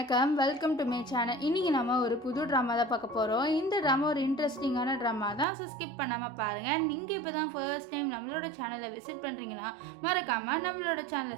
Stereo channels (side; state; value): left; drops out; at 5.5 s